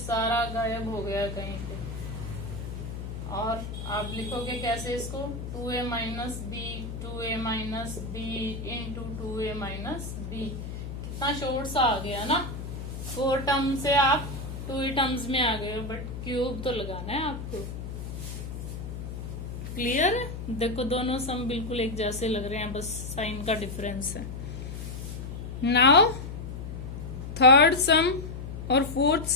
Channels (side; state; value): left; noise; hum, 7 dB below the sound